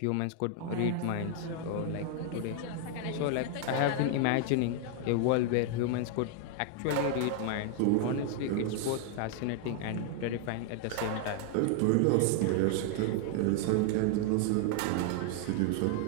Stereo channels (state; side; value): different; both; correlation 0.00